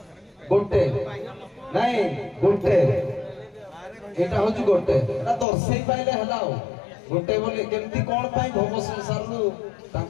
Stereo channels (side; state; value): right; drops out; at 5.5 s